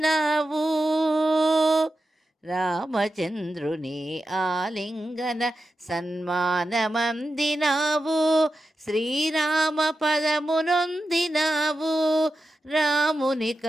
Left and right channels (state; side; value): normal; both; correlation 0.90